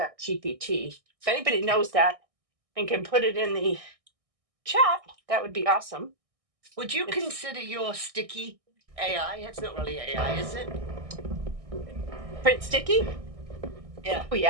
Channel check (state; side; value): late; left; 1.6 ms